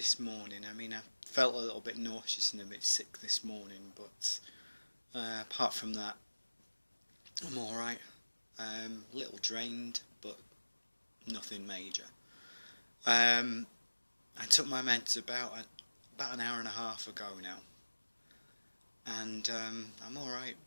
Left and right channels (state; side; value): inverted; both; correlation -1.00